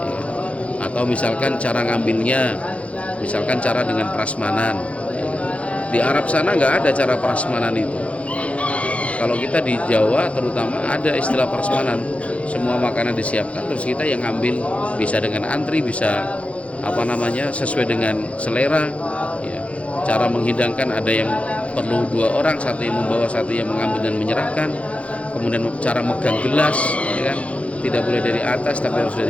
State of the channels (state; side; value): late; right; 0.063 ms